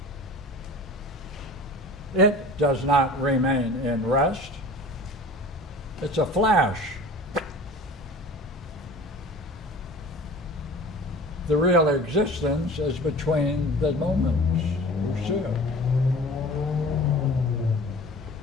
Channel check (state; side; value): normal; both; correlation 0.41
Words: It does not remain in rest. It's a flash. The real existence is between the moments. You see it.